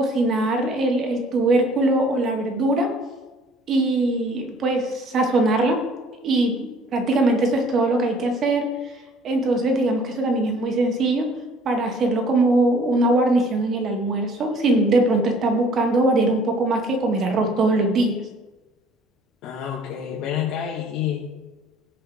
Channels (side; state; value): both; normal; correlation 0.55